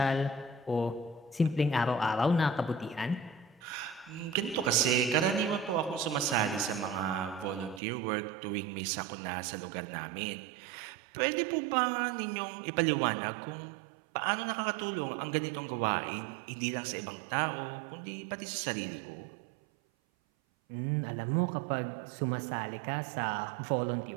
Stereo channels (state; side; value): drops out; left; at 7.8 s